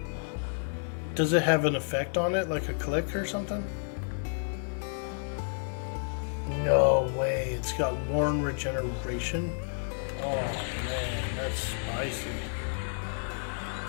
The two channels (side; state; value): right; silent; digital silence